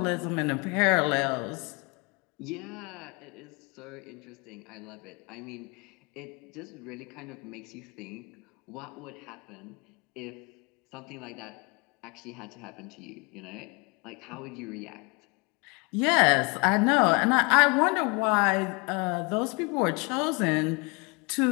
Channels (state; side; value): quieter; right; 30.0 dB